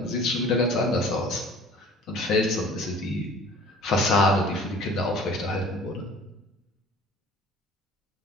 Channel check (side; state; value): both; normal; correlation 0.48